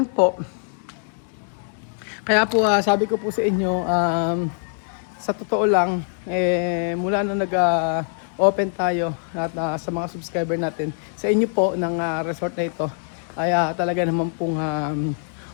po. Kaya po, sabi ko po sa inyo, sa totoo lang, mula na nag-open tayo at sa mga subscriber natin, sa inyo po ng resort na ito, ay talaga naman pong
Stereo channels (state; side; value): silent; right; digital silence